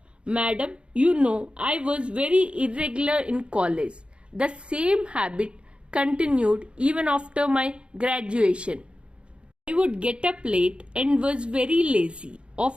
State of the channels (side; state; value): left; late; 0.057 ms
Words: Madam, you know I was very irregular in college. The same habit continued even after my graduation. I would get up late and was very lazy.